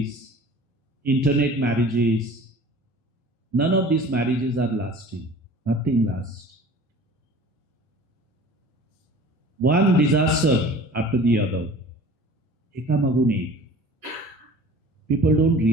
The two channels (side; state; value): both; normal; correlation 0.44